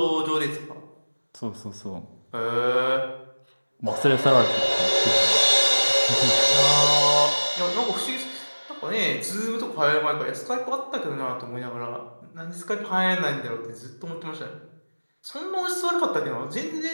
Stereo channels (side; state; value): both; inverted; correlation -1.00